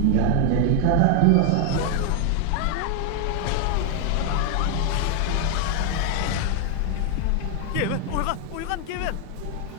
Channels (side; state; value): both; different; correlation 0.00